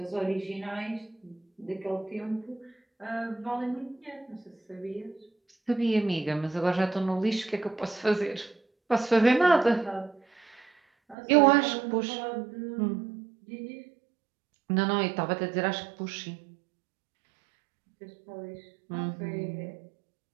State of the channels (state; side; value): drops out; left; at 11.2 s